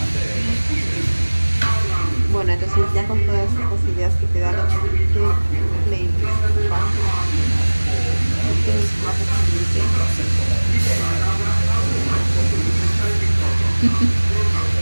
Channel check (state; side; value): inverted; both; correlation -1.00